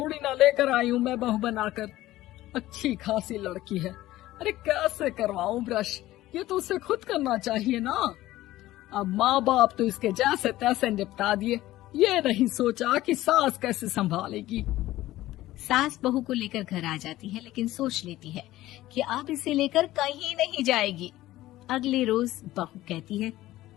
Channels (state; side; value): quieter; right; 15.9 dB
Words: ना लेकर आई हूँ मैं बहू बनाकर। अच्छी खासी लड़की है, अरे कैसे करवाऊं ब्रश? ये तो उसे खुद करना चाहिए ना। अब माँ बाप तो इसके जैसे तैसे निपटा दिए, ये नहीं सोचा कि सास कैसे संभालेगी। सास बहू को लेकर घर आ जाती है, लेकिन सोच लेती है कि अब इसे लेकर कहीं नहीं जाएगी। अगले रोज बहू कहती है,